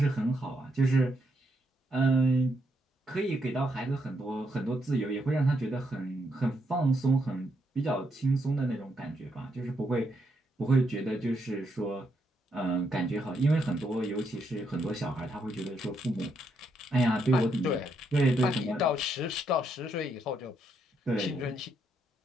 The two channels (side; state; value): both; normal; correlation 0.77